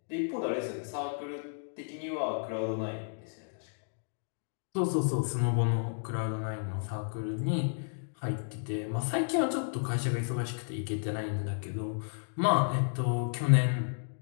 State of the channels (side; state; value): right; silent; digital silence